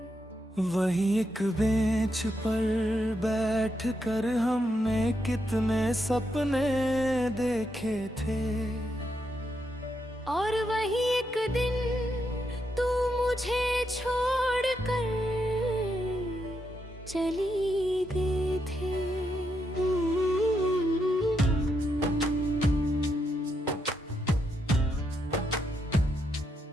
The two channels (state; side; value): normal; both; correlation 0.81